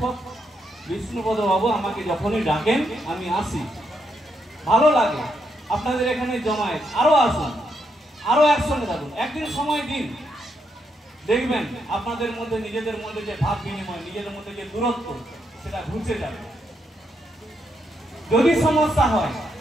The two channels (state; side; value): normal; both; correlation 0.79